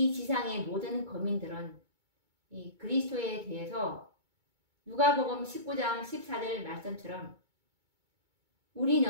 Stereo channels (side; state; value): left; late; 2.2 ms